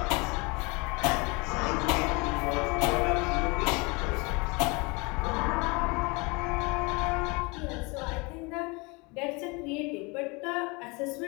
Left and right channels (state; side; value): quieter; right; 27.9 dB